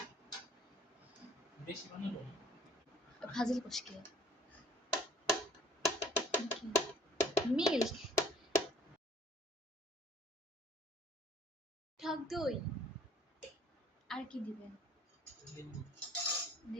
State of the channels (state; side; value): normal; both; correlation 0.55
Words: বেশি বানাবো না। ফাজিল কোশকে মিল্ক টক দই আর কি দিবেন? লেবু।